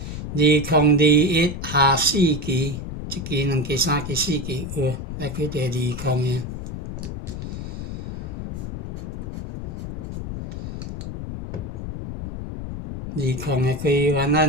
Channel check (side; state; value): left; noise; rumble, 6 dB below the sound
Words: 21，2021下4期，一期两期3期4期，有来开第20个。20的开完